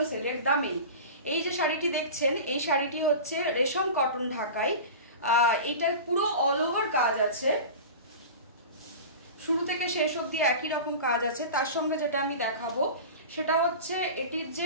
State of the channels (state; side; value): inverted; both; correlation -0.32